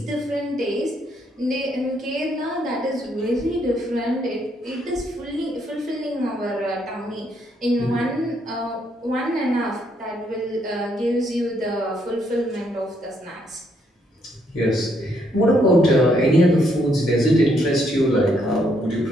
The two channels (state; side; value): normal; both; correlation 0.73